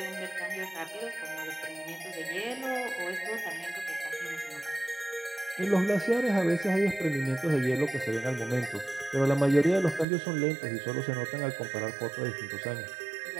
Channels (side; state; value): left; drops out; at 10.1 s